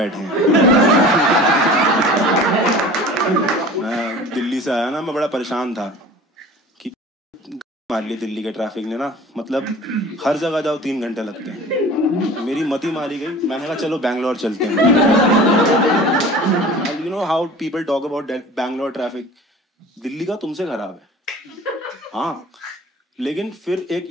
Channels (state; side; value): normal; both; correlation 0.41